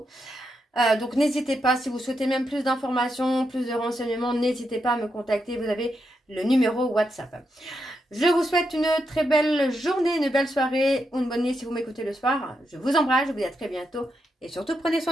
Donc n'hésitez pas, si vous souhaitez même plus d'informations, plus de renseignements, n'hésitez pas à me contacter, vous avez le numéro WhatsApp. Je vous souhaite une très belle journée, une belle soirée ou une bonne nuit si vous m'écoutez le soir. Je vous embrasse, je vous dis à très bientôt et surtout prenez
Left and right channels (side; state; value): both; normal; correlation 0.83